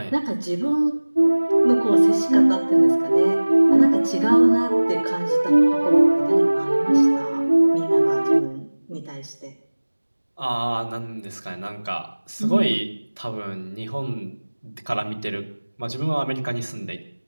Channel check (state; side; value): inverted; both; correlation -1.00